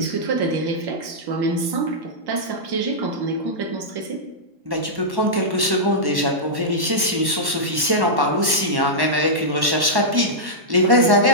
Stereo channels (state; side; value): late; left; 1.1 ms